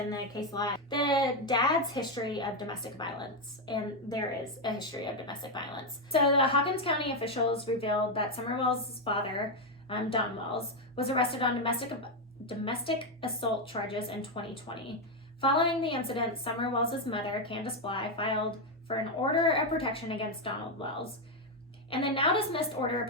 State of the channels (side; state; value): both; normal; correlation 0.04